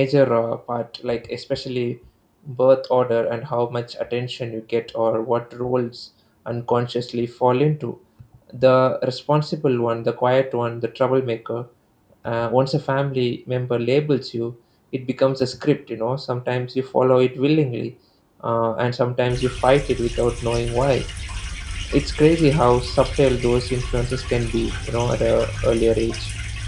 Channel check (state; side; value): identical; both; correlation 1.00